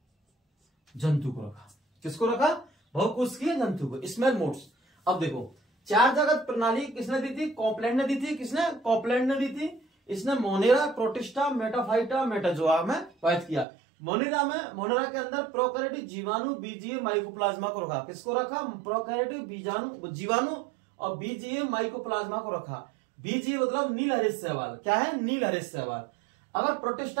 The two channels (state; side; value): drops out; left; at 13.7 s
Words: जंतु को रखा। किसको रखा? बहुकोष की जंतु को, स्मॉल मोड्स। अब देखो, चार जगत प्रणाली किसने दी थी? कॉपलैंड ने दी थी। किसने? कॉपलैंड ने दी थी। इसने मोनेरा, प्रोटिस्टा, मेटाफाइटा, मेटाजोआ में बात किया। मोनेरा के अंदर प्रोकैरियोटिक जीवाणु, बीजीए, माइकोप्लाज्मा को रखा। किसको रखा? प्रोकैरियोटिक जीवाणु और बीजीए, माइकोप्लाज्मा को रखा। बीजीए मतलब नील हरित शैवाल। क्या है? नील हरित शैवाल। अगर